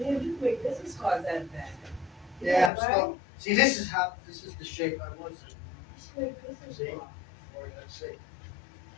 Man, you make business cards out of that. Yeah, I'm right? still. See, this is the shape I was in. You make business See? cards. Or let's say,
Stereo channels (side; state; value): right; drops out; at 2.7 s